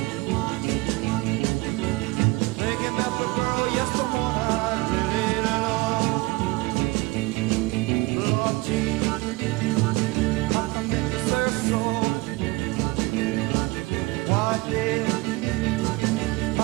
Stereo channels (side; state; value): left; quieter; 23.1 dB